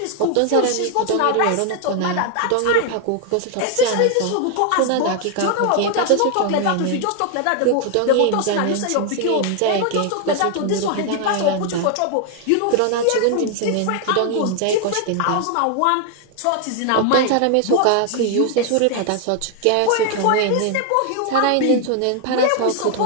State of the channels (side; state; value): both; different; correlation 0.00